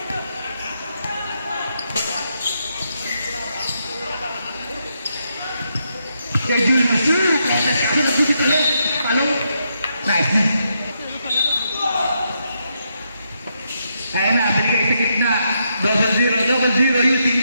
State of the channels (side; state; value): both; inverted; correlation -0.80